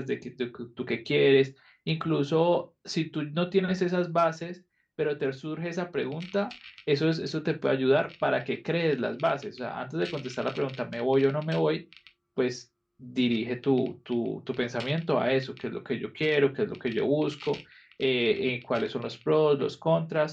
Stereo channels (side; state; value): both; identical; correlation 1.00